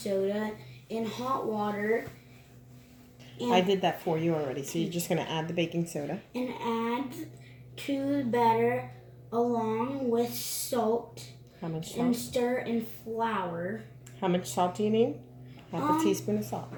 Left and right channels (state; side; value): identical; both; correlation 1.00